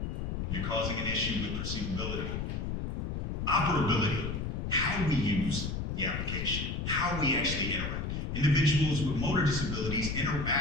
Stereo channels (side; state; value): left; noise; rumble, 3 dB below the sound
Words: You're causing an issue with perceivability. Operability, how we use the application, how we actually interact. Individuals with motor disabilities